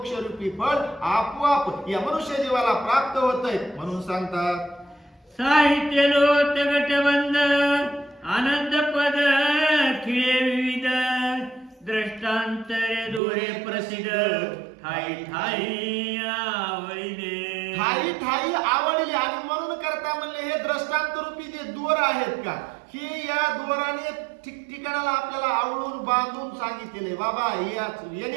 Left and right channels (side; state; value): left; drops out; at 13.2 s